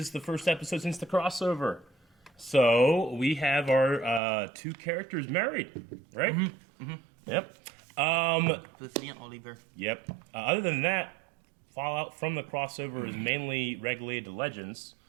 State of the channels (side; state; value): left; drops out; at 4.2 s